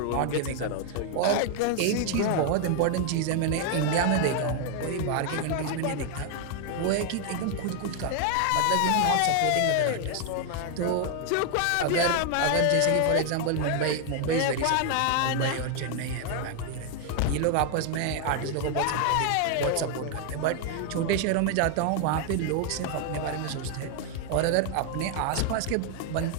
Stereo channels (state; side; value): different; both; correlation 0.00